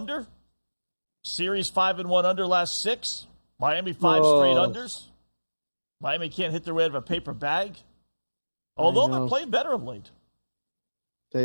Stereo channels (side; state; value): both; inverted; correlation -1.00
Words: Series 5-1 under last 6. Miami 5 straight unders. Miami can't hit their way out of a paper bag. Although they're playing better of late.